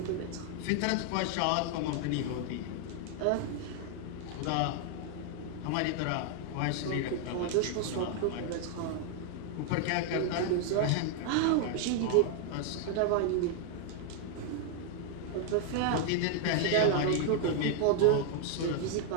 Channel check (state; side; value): different; both; correlation 0.00